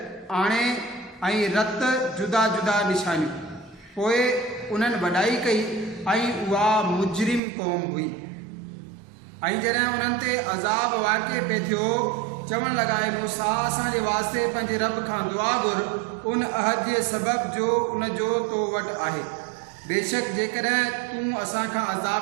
आणे ऐं रत जुदा जुदा निशानियूं। पोइ उन्हनि वॾाई कई ऐं उहा मुजरिम क़ौम हुई। ऐं जॾहिं उन्हनि ते अज़ाब वाक़िअ पे थियो, चवणु लॻा, मूसा असांजे वास्ते पंहिंजे रब खां दुआ घुर, उन अहद जे सबब जो उन जो तो वटि आहे। बेशक जेकॾहिं तूं असांखां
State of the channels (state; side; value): drops out; left; at 7.4 s